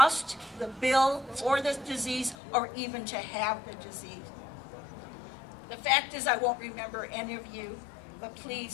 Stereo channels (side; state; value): right; drops out; at 2.4 s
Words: the bill for this disease, or even to have the disease? The fact is I won't remember any of you, but